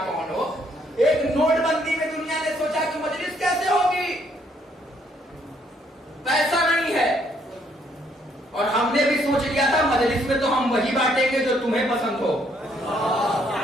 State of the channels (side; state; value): both; normal; correlation 0.69